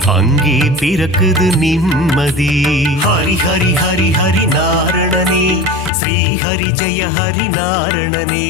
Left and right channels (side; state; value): right; drops out; at 5.9 s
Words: அங்கே பிறக்குது நிம்மதி. ஹரி ஹரி ஹரி ஹரி நாரணனே, ஸ்ரீ ஹரி ஜெய ஹரி நாரணனே,